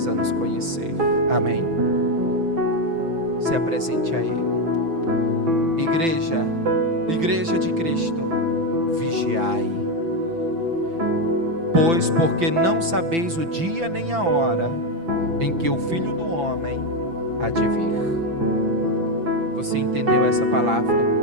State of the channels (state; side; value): late; left; 6.0 ms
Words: nos conhecer. Amém? Se apresente a Ele. Igreja de Cristo, vigiai. Pois porque não sabeis o dia nem a hora em que o Filho do Homem há de vir. Você entendeu essa palavra?